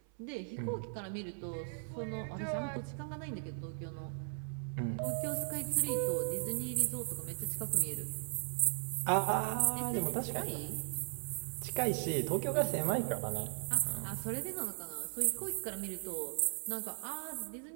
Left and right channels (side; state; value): left; silent; 53 dB below the other